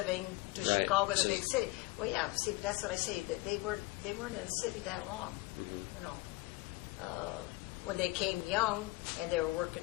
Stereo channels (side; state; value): right; quieter; 21.5 dB